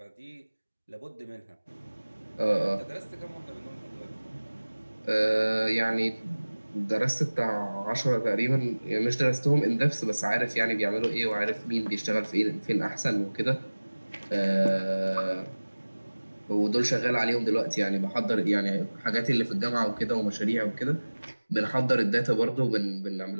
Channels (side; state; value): both; inverted; correlation -1.00